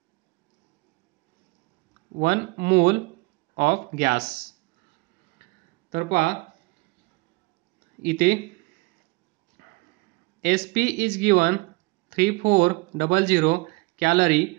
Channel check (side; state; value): left; quieter; 25.5 dB